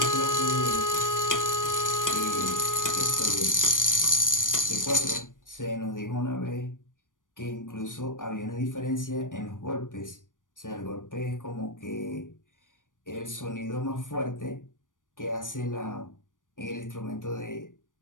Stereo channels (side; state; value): right; late; 0.88 ms